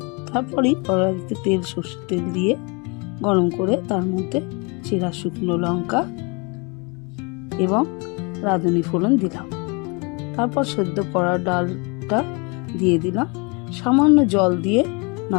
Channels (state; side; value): quieter; right; 30.8 dB